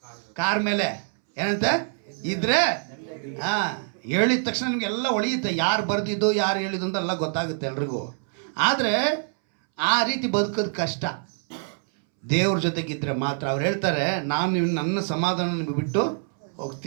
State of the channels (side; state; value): left; silent; 62 dB below the other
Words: ಕಾರ್ ಮೇಲೆ ಏನಂತೆ ಇದ್ರೆ ಹೇಳಿದ ತಕ್ಷಣ ನಿಮಗೆಲ್ಲ ಒಳಿಯುತ್ತೆ, ಯಾರು ಬರ್ದಿದ್ದು ಯಾರು ಹೇಳಿದ್ದು ಅಂತ ಎಲ್ಲ ಗೊತ್ತಾಗುತ್ತೆ ಎಲ್ರಿಗೂ. ಆದರೆ ಆ ರೀತಿ ಬದುಕೋದು ಕಷ್ಟ. ದೇವ್ರ ಜೊತೆಗಿದ್ರೆ ಮಾತ್ರ. ಅವ್ರು ಹೇಳ್ತಾರೆ, ನಾನು ನನ್ನ ಸಮಾಧಾನ ನಿಮಗೆ ಬಿಟ್ಟು